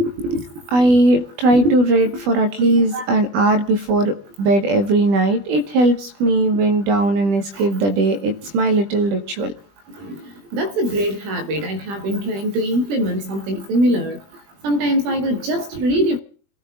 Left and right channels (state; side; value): late; left; 20 ms